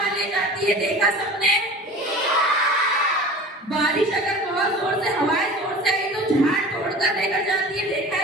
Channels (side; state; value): both; normal; correlation 0.39